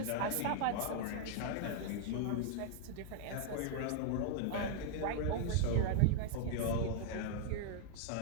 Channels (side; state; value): both; different; correlation -0.01